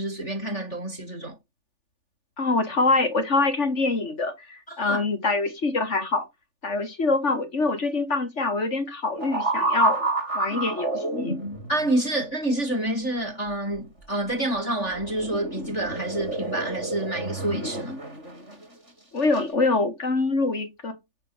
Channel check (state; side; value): late; right; 3.4 ms